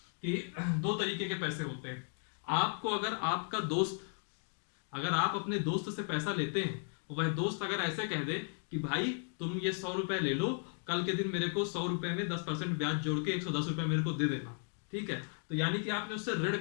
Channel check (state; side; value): silent; right; 54 dB below the other